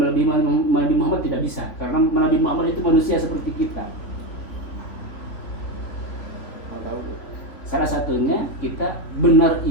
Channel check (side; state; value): right; late; 3.7 ms